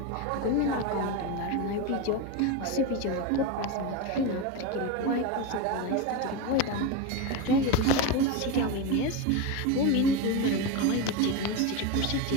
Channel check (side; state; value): both; different; correlation 0.05